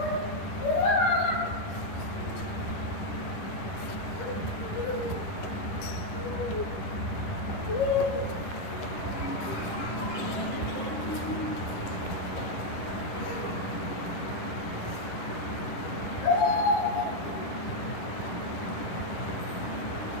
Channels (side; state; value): right; late; 10 ms